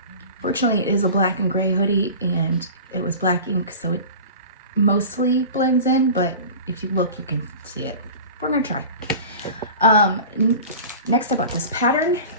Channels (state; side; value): inverted; both; correlation -0.36